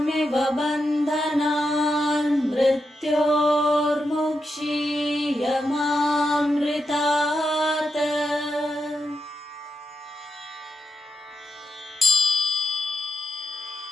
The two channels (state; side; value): normal; both; correlation 0.86